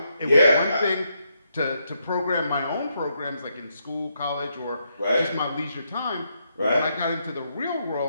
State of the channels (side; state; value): both; inverted; correlation -0.79